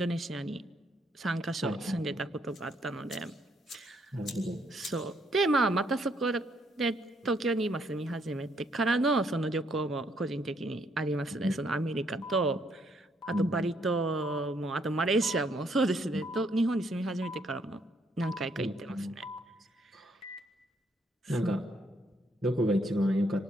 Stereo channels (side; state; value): both; normal; correlation 0.71